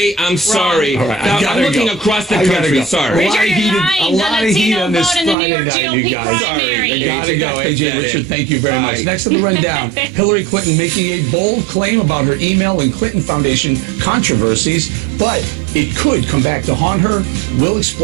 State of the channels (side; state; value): left; drops out; at 5.4 s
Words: I'm sorry. All right, I Now, gotta I'm looking go. across the I gotta country. go. Sorry. A lot of Richard, heat, you're a lying. lot The of heat Latino on this vote in the New Friday York night, GOP you guys. primary. I gotta AJ, go. got AJ that Richard, in. thank you very much. Bye. Next on the rundown, Hillary Clinton making a bold claim about her email and Clinton Foundation controversies, but it could come back to haunt her. We'll